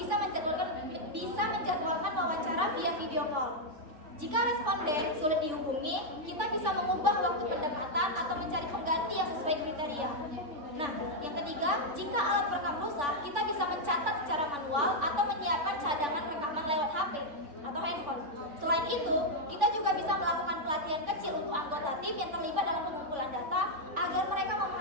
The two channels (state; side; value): late; left; 3.5 ms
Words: menjadwalkan wawancara via video call. Jika responden sulit dihubungi, kita bisa mengubah waktu pendekatan atau mencari pengganti yang sesuai kriteria. Nah, yang ketiga, jika alat perekam rusak, kita bisa mencatat secara manual atau menyiapkan cadangan rekaman lewat HP atau handphone. Selain itu, kita juga bisa melakukan pelatihan kecil untuk anggota tim yang terlibat dalam pengumpulan data agar mereka